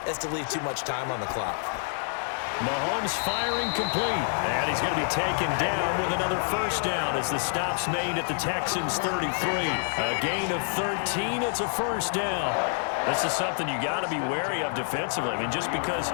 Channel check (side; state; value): right; silent; 60 dB below the other